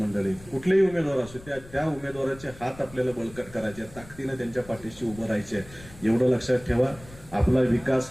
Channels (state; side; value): noise; left; rumble, 19 dB below the sound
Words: कुठलेही उमेदवार असू त्या उमेदवाराचे हात आपल्याला बळकट करायचे, ताकदीनं त्यांच्या पाठीशी उभं राहायचे. एवढं लक्षात ठेवा. आपला विकास